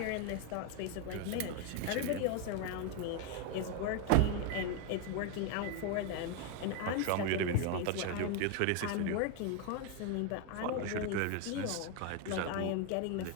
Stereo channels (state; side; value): different; both; correlation 0.01